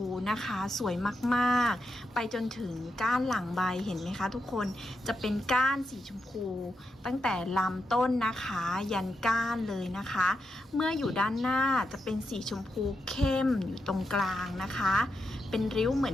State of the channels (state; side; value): normal; both; correlation 0.85